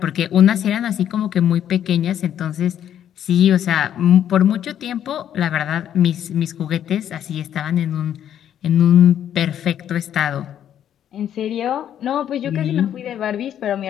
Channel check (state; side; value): quieter; right; 10.2 dB